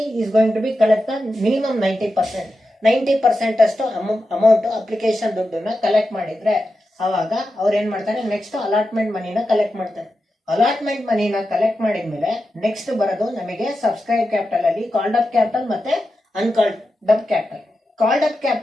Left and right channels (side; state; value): both; normal; correlation 0.90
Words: is going to be collect minimum 90% ಅಷ್ಟು ಅಮೌಂಟ್ ಅಪ್ಲಿಕೇಶನ್ ದುಡ್ಡನ್ನ ಕಲೆಕ್ಟ್ ಮಾಡಿದ್ರೆ ಅವಾಗ ಅವ್ರು ಏನ್ ಮಾಡ್ತಾರೆ, ನೆಕ್ಸ್ಟ್ ಅಲಾಟ್ಮೆಂಟ್ ಮನಿನ ಕಲೆಕ್ಟ್ ಮಾಡ್ತಾರೆ. ಅಲಾಟ್ಮೆಂಟ್ ಮನಿನ ಕಲೆಕ್ಟ್ ಮಾಡಿದ್ಮೇಲೆ ನೆಕ್ಸ್ಟ್ ಬರೋದು ನಮಗೆ ಸಬ್ಸ್ಕ್ರೈಬ್ ಕ್ಯಾಪಿಟಲ್ ಅಲ್ಲಿ ಕಾಲ್ಡ್ ಅಪ್ ಕ್ಯಾಪಿಟಲ್ ಮತ್ತೆ uncalled up capital. Called up